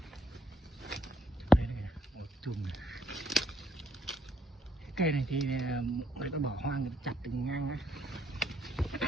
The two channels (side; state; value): both; normal; correlation 0.68